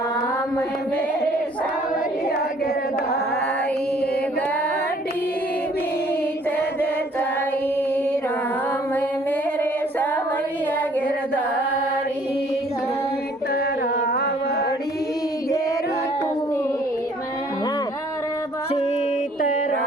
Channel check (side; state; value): both; normal; correlation 0.59